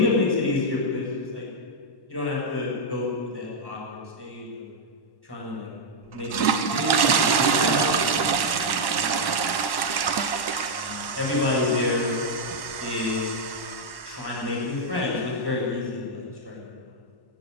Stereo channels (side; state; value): right; late; 1.1 ms